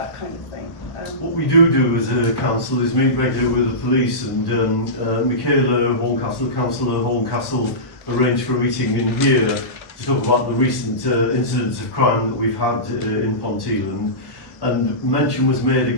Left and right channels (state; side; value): late; right; 1.1 ms